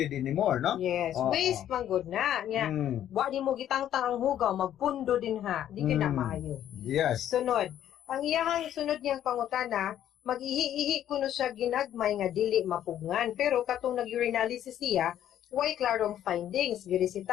anymore no Yes, waste man good na. Nya, wa di mo gitangtang ang hugaw, magpundo din ha. Di ka na maayo. yes Sunod, ang iyahang sunod niyang pangutana, mag-ihi-ihi kuno siya ginagmay nga dili mapugngan. Pero katong nag-urinalysis siya, way klarong findings.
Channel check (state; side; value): quieter; right; 11.1 dB